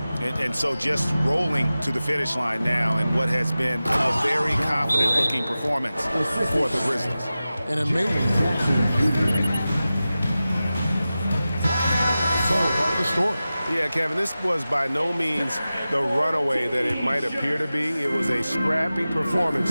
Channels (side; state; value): both; inverted; correlation -0.95